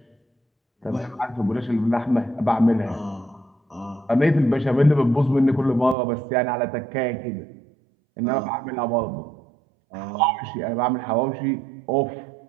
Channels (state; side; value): drops out; left; at 6.0 s